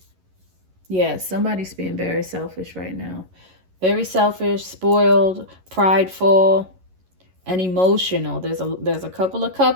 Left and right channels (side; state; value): left; late; 11 ms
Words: yeah, somebody's being very selfish right now. Very selfish, spoiled, prideful, and emotional. There's a couple of